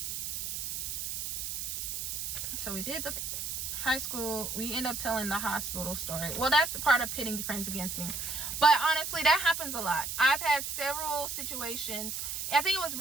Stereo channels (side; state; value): right; noise; hiss, 4 dB below the sound